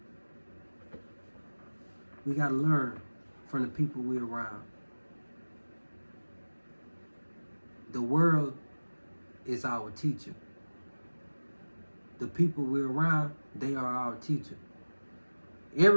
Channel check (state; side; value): inverted; both; correlation -1.00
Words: We got to learn from the people we're around. The world is our teacher. The people we're around, they are our teacher.